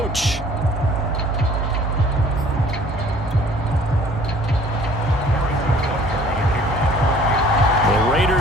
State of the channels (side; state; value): both; normal; correlation 0.53